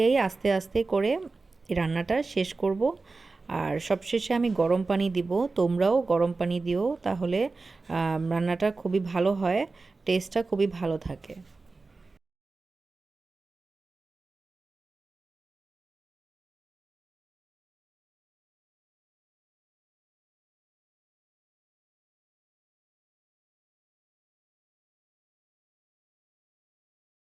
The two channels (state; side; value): quieter; left; 3.8 dB